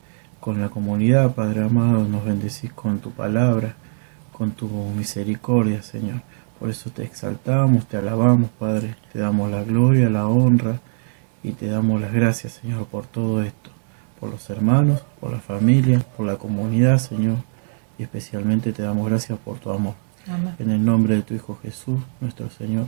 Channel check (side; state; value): left; silent; digital silence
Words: con la comunidad, Padre amado, nos bendecís con tu palabra, con tu misericordia, Señor. Por eso te exaltamos, te alabamos, Padre, te damos la gloria, la honra y te damos las gracias, Señor, por todo esto, por los hermanos, por la familia, por la comunidad, Señor, y especialmente te damos gracias por tu amor. Amén. En el nombre de tu Hijo Jesús, nuestro